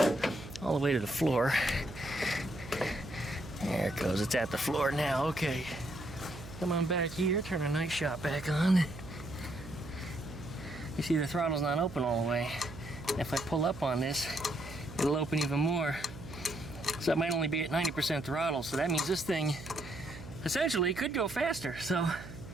all the way to the floor. There it goes, it's at the floor now. Okay, come on back here, turn our night shot back on. You see the throttle's not open all the way. If I pull up on this, it'll open even more. So it might only be at 90% throttle, so that means this thing essentially could go faster. So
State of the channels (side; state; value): right; noise; hum, 14 dB below the sound